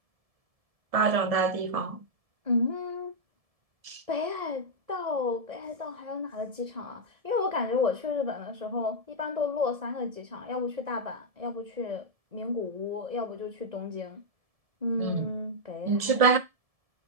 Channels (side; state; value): left; late; 1.7 ms